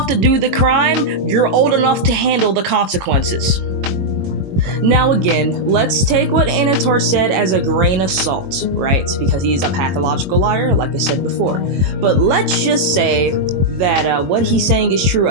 to do the crime, you're old enough to handle the consequences. Now again, let's take what Anator said as a grain of salt, right? Because he's a pathological liar, like I said before. But let's just say that what he's saying is true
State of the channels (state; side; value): late; left; 22 ms